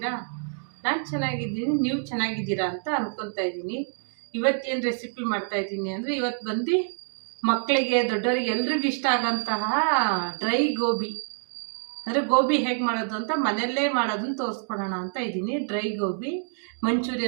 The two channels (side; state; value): left; silent; 60 dB below the other